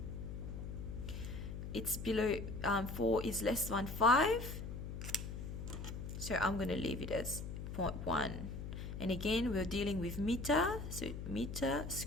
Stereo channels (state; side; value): noise; left; hum, 7 dB below the sound